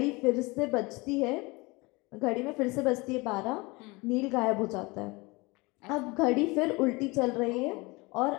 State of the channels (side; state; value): right; quieter; 24.9 dB